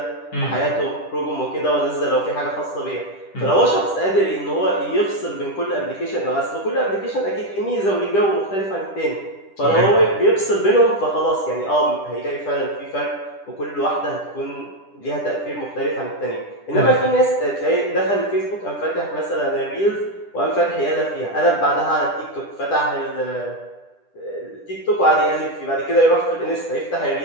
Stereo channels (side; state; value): right; late; 10 ms